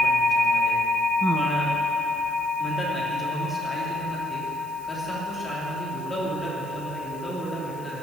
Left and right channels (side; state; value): right; noise; hiss, 22 dB below the sound